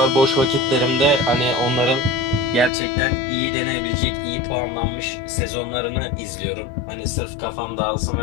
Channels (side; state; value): right; drops out; at 2.7 s